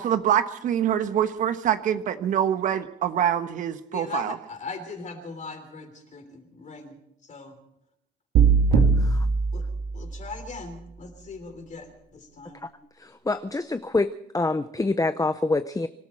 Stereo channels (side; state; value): left; quieter; 4.1 dB